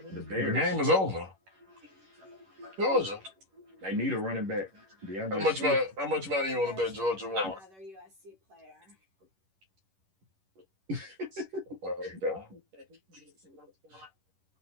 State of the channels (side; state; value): left; late; 11 ms